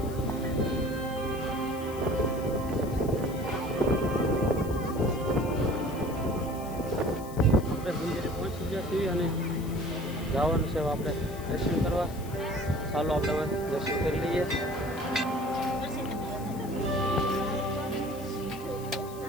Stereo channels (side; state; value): left; noise; hiss, 18 dB below the sound